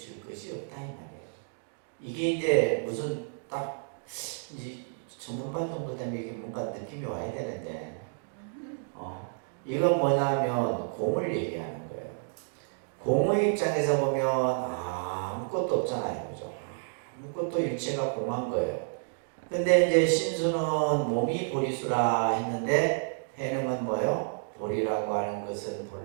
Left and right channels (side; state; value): left; silent; digital silence